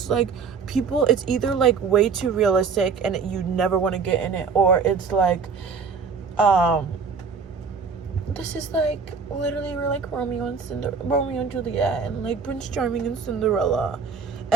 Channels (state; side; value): quieter; left; 5.4 dB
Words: like, people, it's either like way too realistic and you never want to get in it, or it's like, this is like, literally, we're like Romeo and Juliet, and like Prince Charming and Cinderella,